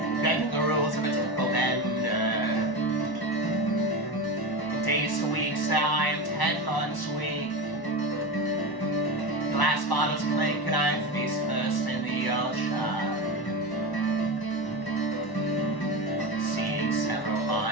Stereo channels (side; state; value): right; late; 1.1 ms